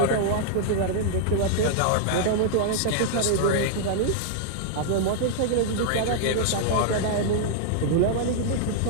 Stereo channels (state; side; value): different; both; correlation -0.01